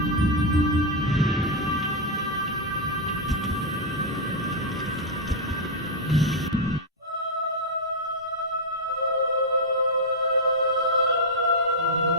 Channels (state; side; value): normal; both; correlation -0.02